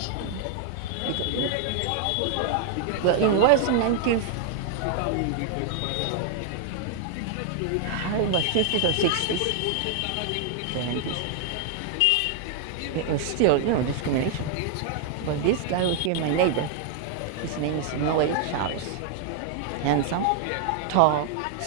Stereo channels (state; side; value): different; both; correlation 0.00